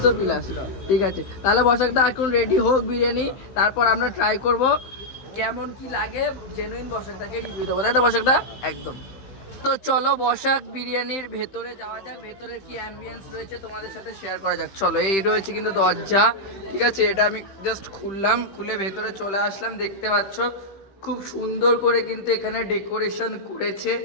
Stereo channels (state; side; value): late; right; 15 ms